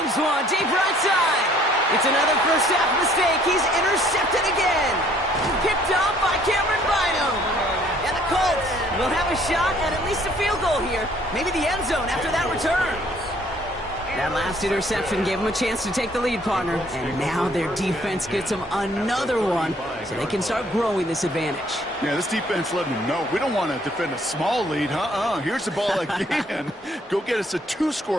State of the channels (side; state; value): both; normal; correlation 0.61